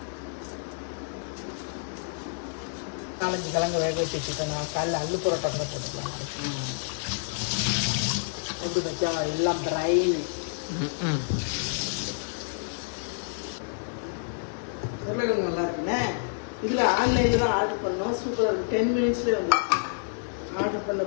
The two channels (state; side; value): silent; right; digital silence